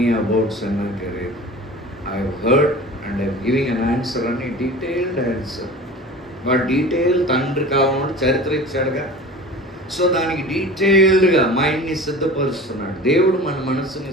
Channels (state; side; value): normal; both; correlation 0.38